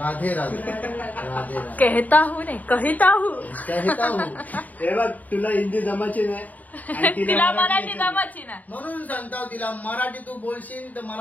राधे. राधे राधे कहता हूँ नाही कहता हूँ. कहता हूँ. हे बघ तुला हिंदी जमायची नाही आणि तिला मराठी जमाची ना. म्हणून सांगता तिला मराठी तू बोलशील तर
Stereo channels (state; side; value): late; right; 0.077 ms